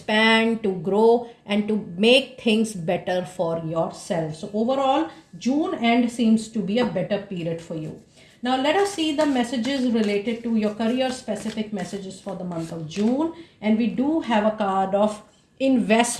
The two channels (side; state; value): both; identical; correlation 1.00